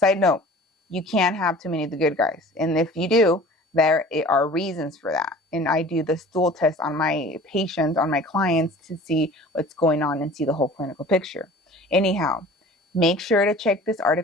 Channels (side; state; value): both; normal; correlation 0.44